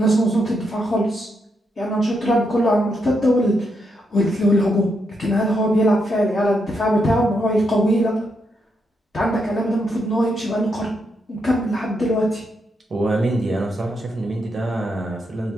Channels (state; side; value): normal; both; correlation 0.80